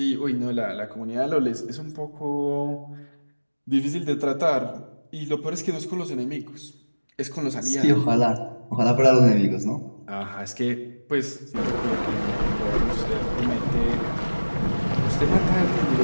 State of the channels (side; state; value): both; inverted; correlation -1.00